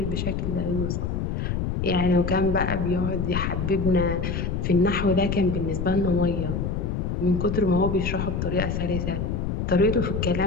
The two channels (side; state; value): left; noise; rumble, 1 dB below the sound